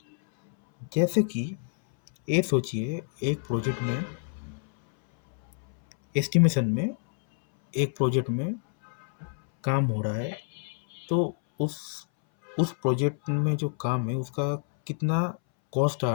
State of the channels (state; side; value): silent; right; 60 dB below the other